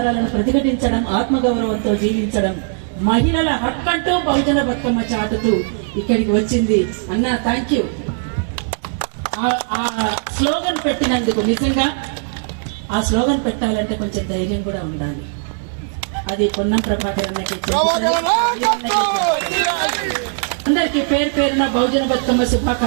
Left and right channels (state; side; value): silent; left; digital silence